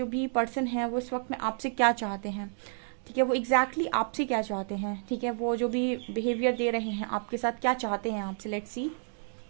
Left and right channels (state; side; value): silent; left; 58 dB below the other